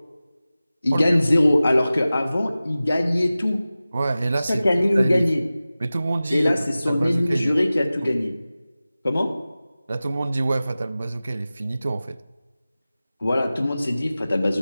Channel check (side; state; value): both; inverted; correlation -0.96